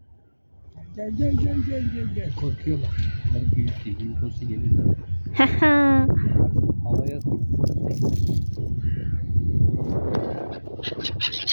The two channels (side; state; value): both; inverted; correlation -1.00